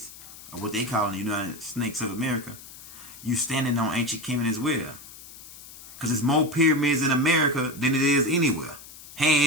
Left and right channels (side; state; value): left; noise; hiss, 17 dB below the sound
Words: or what they call the United Snakes of America, you standing on ancient Kemet as well. Because there's more pyramids in America than it is anywhere,